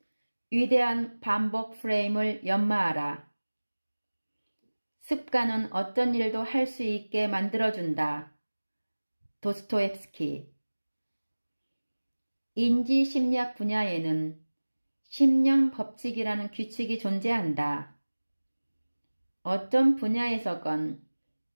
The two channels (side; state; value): both; inverted; correlation -1.00